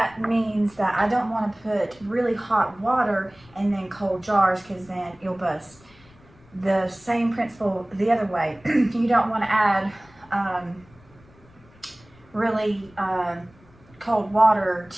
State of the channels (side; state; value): left; noise; rumble, 27 dB below the sound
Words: means that I don't want to put really hot water and then cold jars, because then you'll bust. The same principle the other way. You don't want to add really cold water